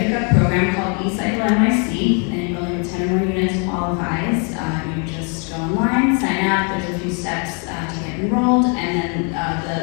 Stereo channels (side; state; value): right; quieter; 35.8 dB